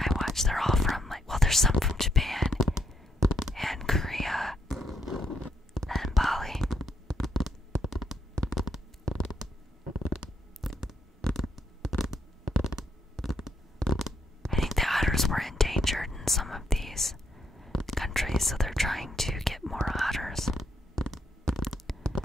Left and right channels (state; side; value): normal; both; correlation 0.76